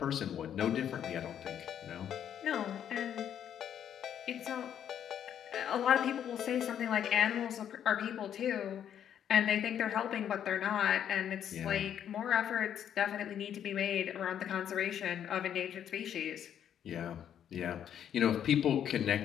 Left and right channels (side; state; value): right; quieter; 9.5 dB